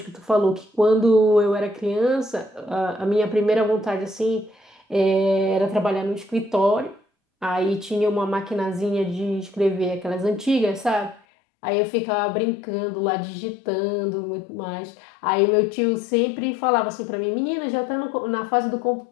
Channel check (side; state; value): right; drops out; at 11.2 s